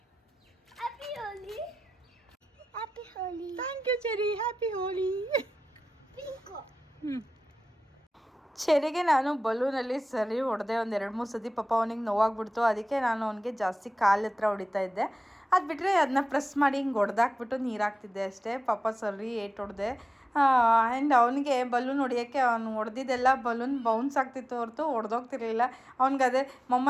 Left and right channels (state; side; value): normal; both; correlation 0.95